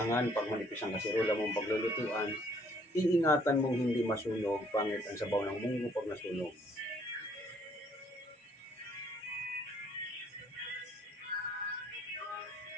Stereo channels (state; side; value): normal; both; correlation 0.63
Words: pag manipis ang kasirola mong paglulutuan, iingatan mong hindi masunog. Pangit ang sabaw ng munggo pag nasunog.